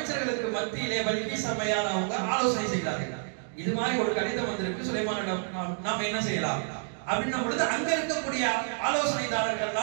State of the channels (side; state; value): left; silent; digital silence